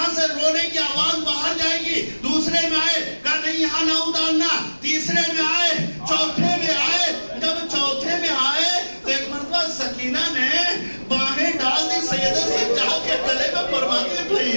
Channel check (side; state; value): both; inverted; correlation -1.00